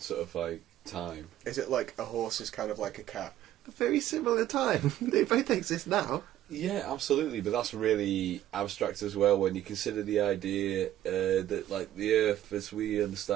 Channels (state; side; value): quieter; left; 12.8 dB